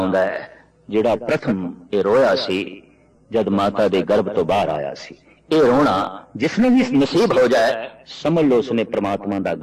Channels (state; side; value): identical; both; correlation 1.00